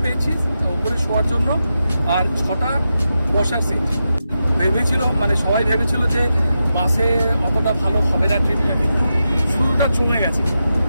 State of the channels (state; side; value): inverted; both; correlation -0.88